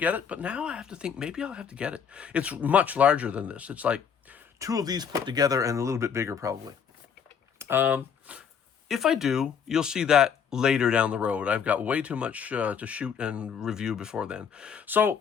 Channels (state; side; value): quieter; right; 7.2 dB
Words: get it, but now I have to think maybe I'll have to get it. It's much larger than this. It's like 2 of these put together and a little bit bigger probably. If I do, you'll see that later down the road. I've got way too much to shoot and review before then.